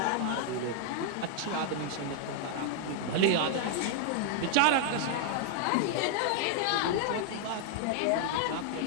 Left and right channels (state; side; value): different; both; correlation 0.00